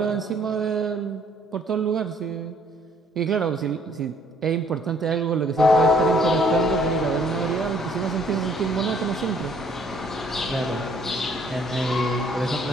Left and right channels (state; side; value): normal; both; correlation 0.61